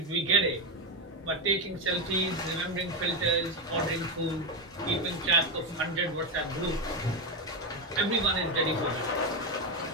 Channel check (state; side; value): normal; both; correlation 0.10